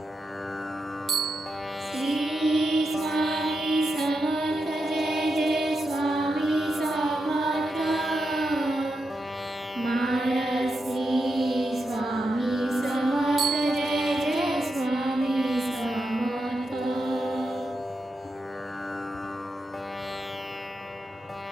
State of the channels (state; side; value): normal; both; correlation 0.86